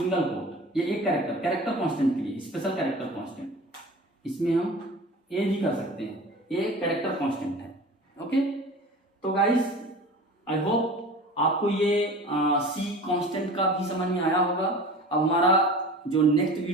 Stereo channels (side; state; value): both; normal; correlation 0.38